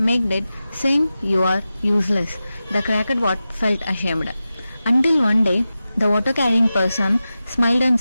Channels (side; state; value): both; inverted; correlation -0.93